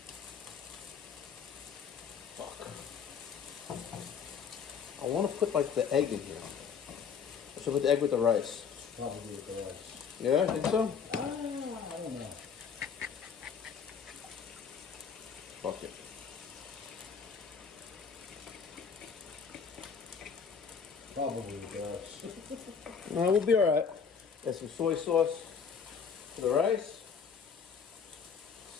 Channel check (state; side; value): quieter; right; 6.4 dB